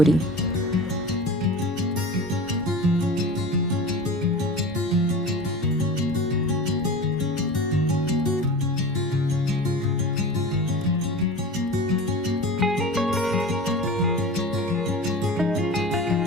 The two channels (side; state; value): both; normal; correlation 0.34